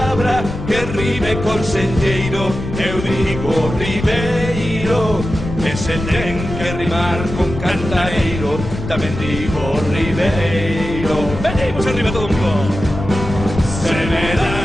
que rime con senlleiro, eu digo Ribeiro. E se ten que rimar con cantareiro, tamén digo Ribeiro. Venimos arriba todo un pouco. Se me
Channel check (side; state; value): left; noise; rumble, 7 dB below the sound